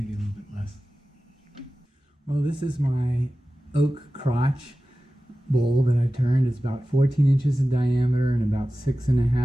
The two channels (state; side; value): normal; both; correlation 0.95